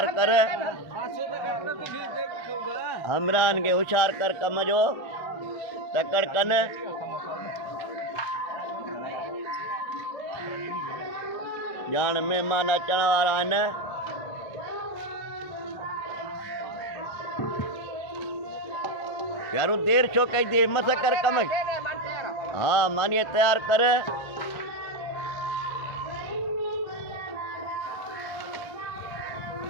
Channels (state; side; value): late; right; 1.6 ms